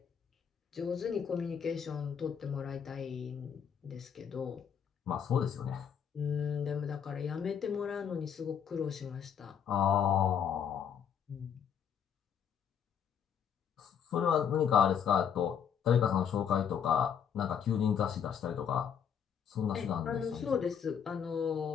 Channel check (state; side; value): quieter; right; 7.9 dB